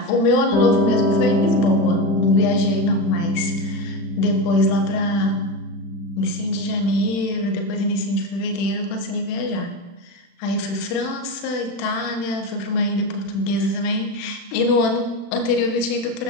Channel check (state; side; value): late; right; 35 ms